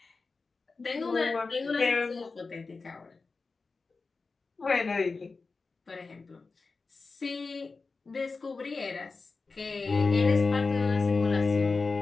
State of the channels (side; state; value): right; quieter; 4.1 dB